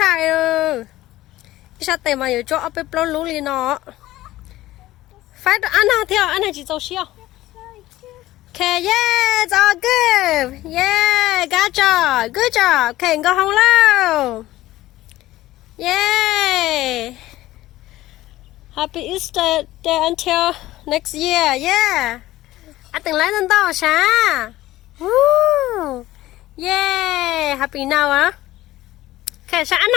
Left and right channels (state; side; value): quieter; right; 16.2 dB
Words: ơ. Sao tệ mà giờ cho ấp bếp lon lú liền nó. Phải ăn nào theo, ăn này chỉ dầu xiao. Okay, yeah, it's all good. Yeah, good job. Okay, go home now. Yay. Happy Easter day until next year. Yeah. Anh từng lấy lên to sao? Woo. Yeah. Happy now, huh? Okay, sao anh